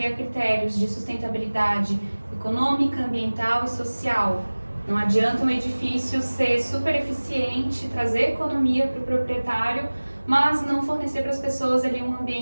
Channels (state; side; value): inverted; both; correlation -1.00